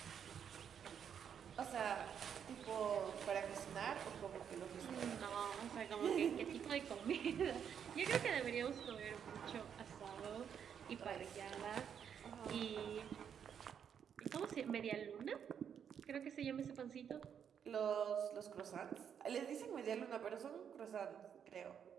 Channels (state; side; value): quieter; left; 8.0 dB